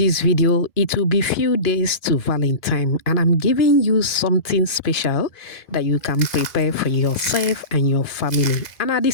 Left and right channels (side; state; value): right; late; 2.4 ms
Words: video, it will be few days to Valentine, and I'm giving you something special that you can prepare for yourself and your family, and at the